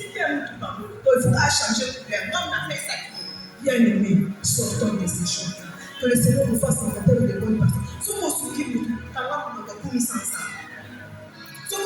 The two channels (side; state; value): both; identical; correlation 1.00